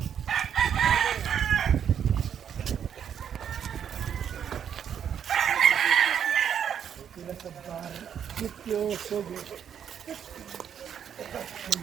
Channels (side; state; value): left; quieter; 8.5 dB